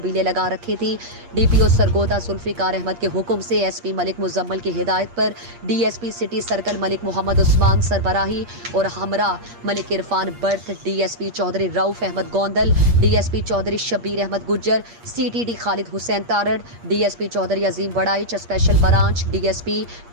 लगा रखी थी। DPO सरगोदा जुल्फिकार अहमद के हुक्म से SP मलिक मुजम्मल की हिदायत पर DSP city circle Malik Mohammad Usman सरबराही और हमरा मलिक इरफान बर्थ, DSP Chaudhry Rauf Ahmed Gondal, DSP Chaudhry Shabbir Ahmed Gujjar, CTD Khalid Hussain Tarar, DSP Chaudhry Azeem Waraich special branch, DSP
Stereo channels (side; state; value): left; late; 8.5 ms